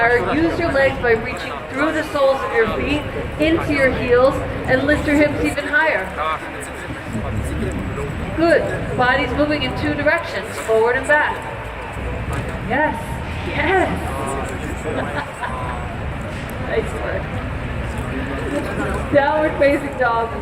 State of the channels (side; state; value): both; identical; correlation 1.00